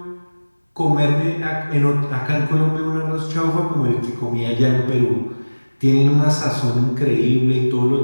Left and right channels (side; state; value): both; inverted; correlation -1.00